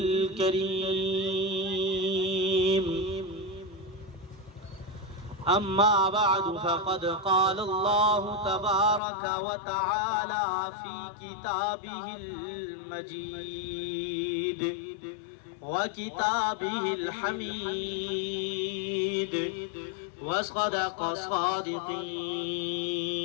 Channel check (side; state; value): right; drops out; at 9.0 s